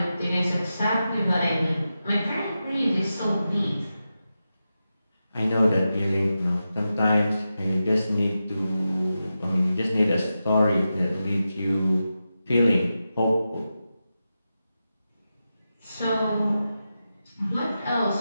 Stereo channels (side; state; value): both; inverted; correlation -0.91